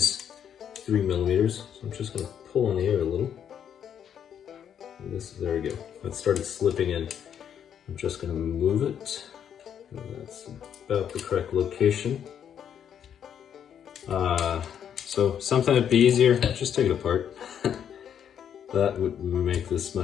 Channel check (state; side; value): quieter; right; 8.8 dB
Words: 3 millimeters. So I'm just gonna pull on the air a little. And there we go. That started slipping in. I'm just gonna move it. That's about the correct location. So something that'd be easier, just take it apart. That would make this